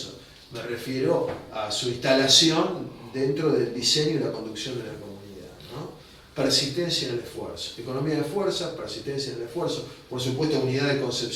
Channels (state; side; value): identical; both; correlation 1.00